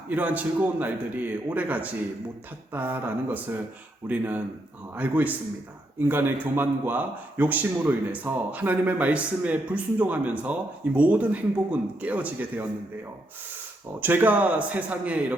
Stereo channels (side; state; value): both; normal; correlation 0.78